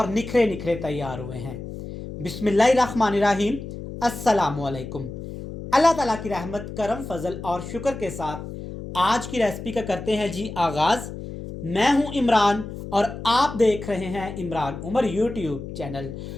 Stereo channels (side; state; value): left; noise; hum, 10 dB below the sound